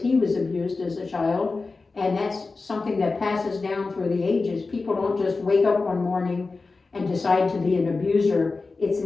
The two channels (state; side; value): quieter; right; 3.9 dB